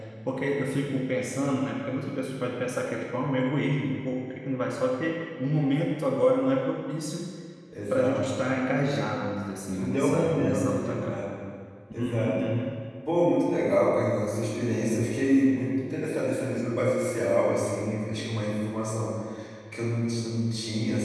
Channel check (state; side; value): identical; both; correlation 1.00